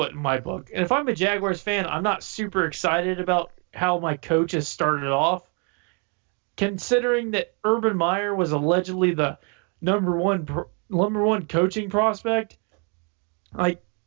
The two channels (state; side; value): quieter; left; 36.6 dB